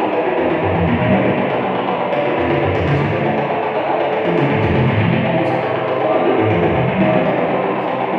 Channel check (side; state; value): both; identical; correlation 1.00